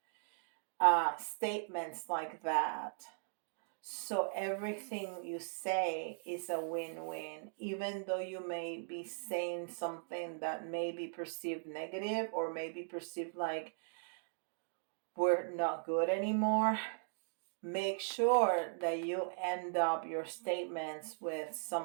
statements like that, So everything you say is a win-win, even though you may be saying something that may be perceived negative or may be perceived like we're not good anymore. Make sure that you end up your statements with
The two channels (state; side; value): silent; left; digital silence